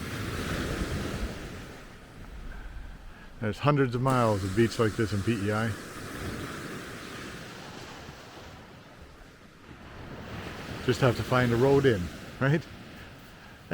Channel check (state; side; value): identical; both; correlation 1.00